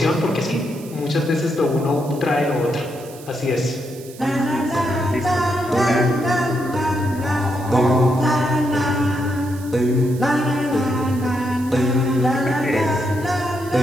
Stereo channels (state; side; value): noise; right; hiss, 20 dB below the sound